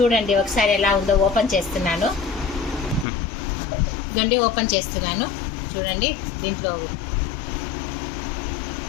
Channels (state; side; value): drops out; right; at 3.1 s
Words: ఒకసారి ఎలా ఉందో. ఓపెన్ చేస్తున్నాను. చూడండి దీంట్లో